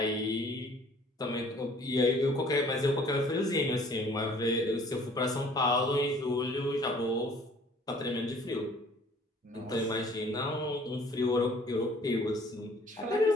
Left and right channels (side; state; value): both; normal; correlation 0.55